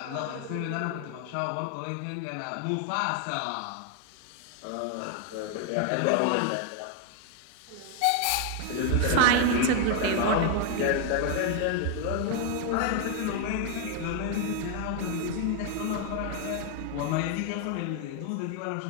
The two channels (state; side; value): different; both; correlation 0.00